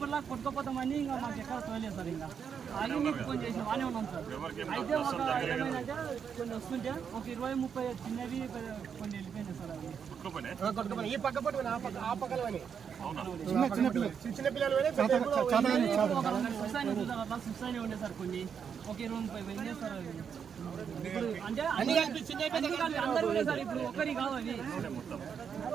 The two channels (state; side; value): quieter; left; 7.2 dB